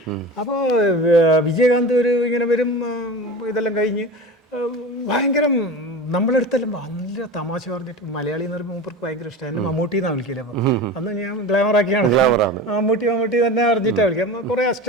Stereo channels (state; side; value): normal; both; correlation 0.31